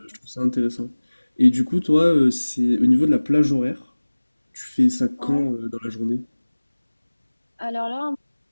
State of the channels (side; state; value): both; inverted; correlation -1.00